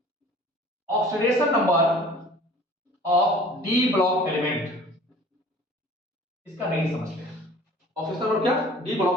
oxidation number of D block element, इसका रेंज समझते हैं। ऑक्सीडेशन नंबर क्या, डी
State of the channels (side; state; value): both; normal; correlation 0.47